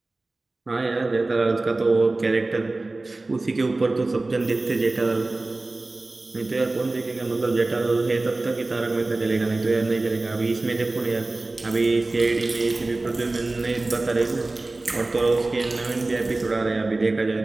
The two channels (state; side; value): quieter; left; 3.1 dB